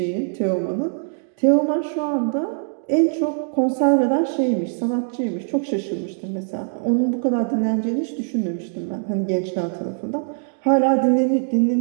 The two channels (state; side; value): silent; left; digital silence